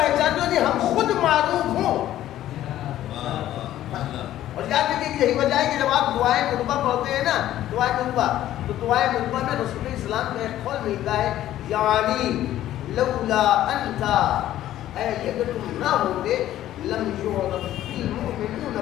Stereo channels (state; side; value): quieter; right; 13.1 dB